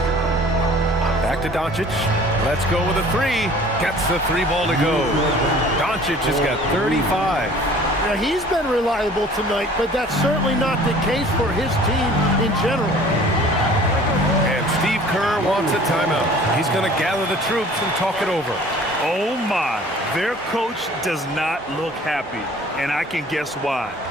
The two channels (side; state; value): both; normal; correlation 0.49